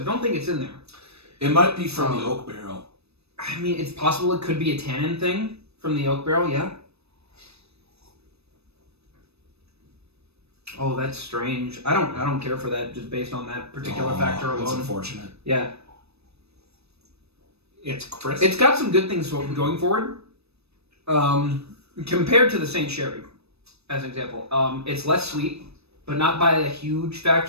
don't think it's in there. It might be from the oak barrel. I mean, it's possible it could be a tannin thing from the oak barrel, yeah. Oh, that's strange. I don't care for that just based on that particular factor alone. That's unfortunate. Yeah. It's crisp. It's got some good things going forward. Compared to the Saint Sherry, as an example. It's less sweet, but not by a huge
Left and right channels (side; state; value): left; late; 0.79 ms